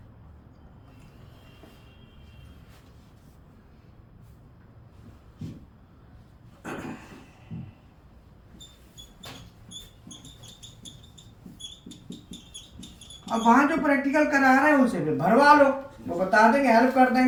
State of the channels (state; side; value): identical; both; correlation 1.00